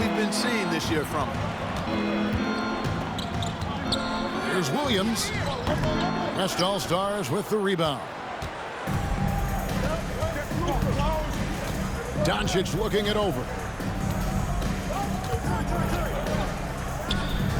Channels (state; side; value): identical; both; correlation 1.00